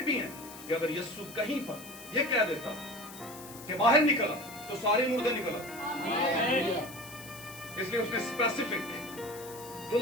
भी हैं कि अगर यीशु कहीं पर यह कह देता कि बाहर निकला तो सारे मुर्दे निकला। इसलिए उसने स्पेसिफिक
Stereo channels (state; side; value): noise; left; hiss, 15 dB below the sound